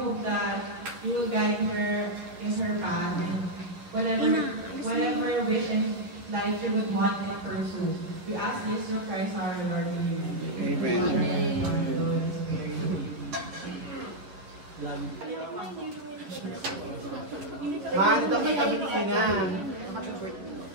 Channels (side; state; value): left; late; 11 ms